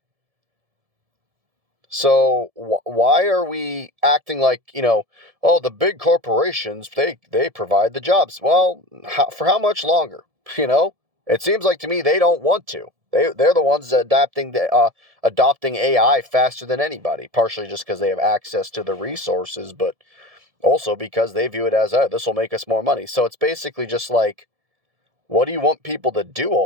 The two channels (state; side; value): late; left; 1.7 ms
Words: So why are we acting like, oh, the big corporations, they provide the jobs? Well, for how much longer? It seems like to me they don't want to. They're the ones adopting AI faster than anybody, partially just because they have access to the resources, but also because they view it as, oh, this will make us more money. So it's basically just like, what do you want people to do